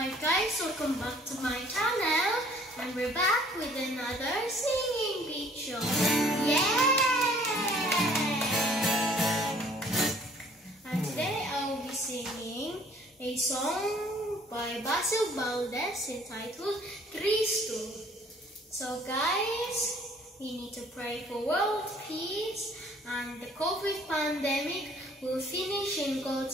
guys, welcome back to my channel, and we're back with another singing video. Yay! And today I will be singing a song by Basil Valdez entitled Cristo. So guys, we need to pray for world peace and the COVID pandemic will finish in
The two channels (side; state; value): both; normal; correlation 0.57